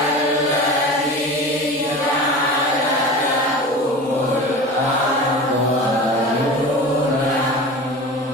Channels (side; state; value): both; normal; correlation 0.34